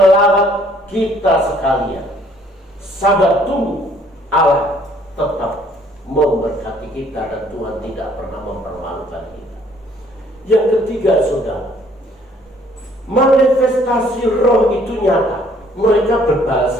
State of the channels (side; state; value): both; normal; correlation 0.61